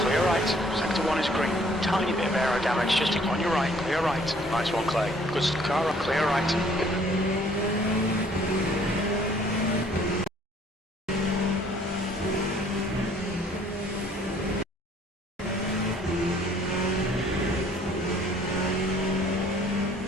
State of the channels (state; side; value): normal; both; correlation 0.59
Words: right. Sector 1 is green. Tiny bit of aero damage just on your right. Clear right. Nice one, Clay. Good car. Clear right.